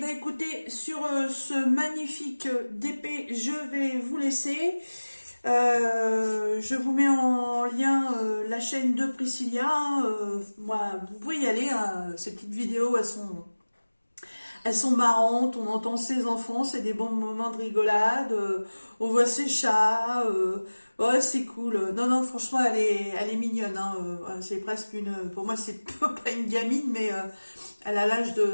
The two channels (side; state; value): both; inverted; correlation -1.00